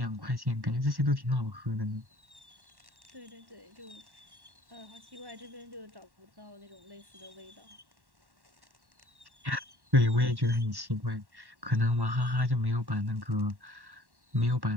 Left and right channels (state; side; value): late; left; 1.1 ms